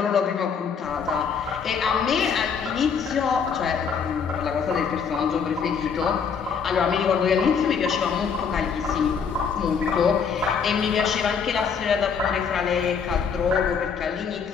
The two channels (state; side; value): quieter; right; 6.3 dB